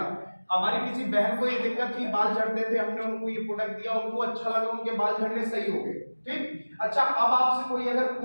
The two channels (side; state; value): both; inverted; correlation -1.00